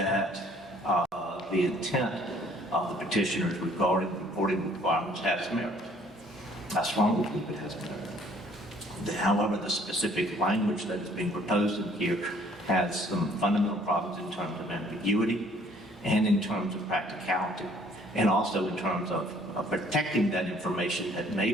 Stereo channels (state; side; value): normal; both; correlation 0.59